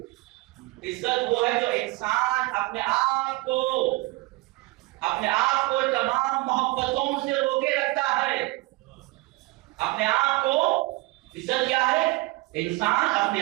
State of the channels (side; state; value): left; quieter; 21.8 dB